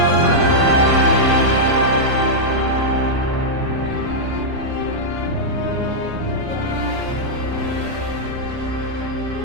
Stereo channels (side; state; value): left; late; 15 ms